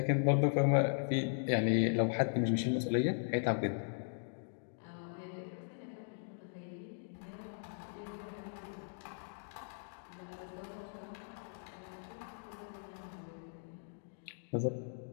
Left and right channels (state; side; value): silent; right; digital silence